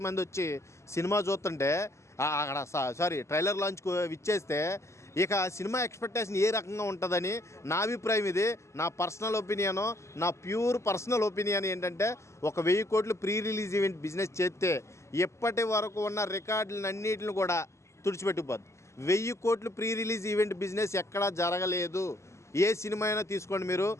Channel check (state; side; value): late; right; 0.13 ms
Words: మంది వచ్చి సినిమా చూస్తుంటే అక్కడ సారీ ట్రైలర్ లాంచ్కు విచ్చేస్తే ఇక సినిమా ఎక్స్పెక్టేషన్ ఏ రకంగా ఉంటుందని నా అభిప్రాయం. ఇది నా పర్సనల్ ఒపీనియను, నా ప్యూర్ పర్సనల్ ఒపీనియన్ ఏంటంటే ఒక 1000 కోట్లు ప్రీ రిలీజ్ ఈవెంట్ బిజినెస్ చేస్తే ఇప్పటి వరకు ఉన్న రికార్డులన్నిటిని కూడా తుడిచిపెట్టుకుపోద్ది. 1000 కోట్లు ప్రీ రిలీజ్ ఈవెంట్ బిజినెస్ ఎక్కడా జరగలేదు. ఏ సినిమా అయినా తీసుకోండి మీరు,